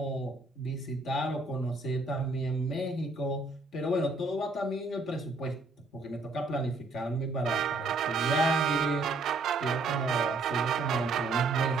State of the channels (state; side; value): quieter; left; 3.3 dB